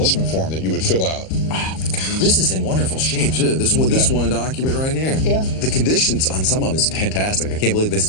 form that you would fill out. Oh, my God. This is in wonderful shape, too. This one document right here. Yeah. The conditions on some of them is fantastic. I can't believe this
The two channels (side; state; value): right; late; 38 ms